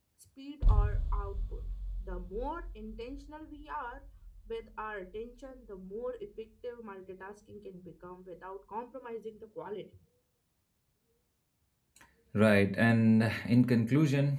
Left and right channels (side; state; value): both; identical; correlation 1.00